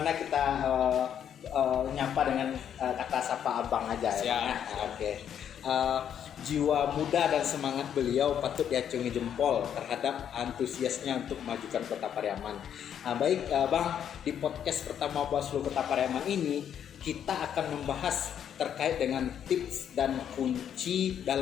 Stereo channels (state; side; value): quieter; right; 9.1 dB